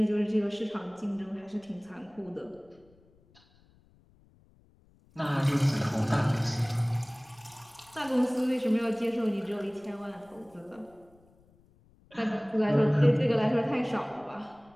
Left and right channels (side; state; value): left; noise; rumble, 30 dB below the sound